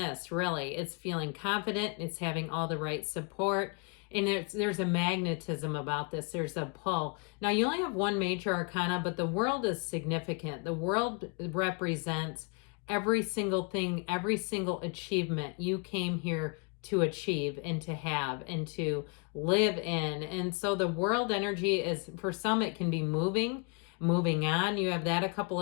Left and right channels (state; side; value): quieter; right; 35.4 dB